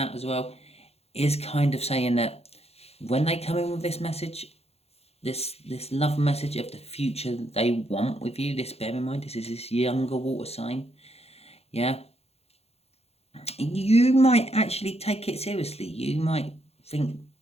as well is kind of saying that when they come in with this message, this love message of the future they want with you, this, bear in mind, this is this younger water sign. Yeah. You might actually take it seriously. You might think,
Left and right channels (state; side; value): late; right; 0.30 ms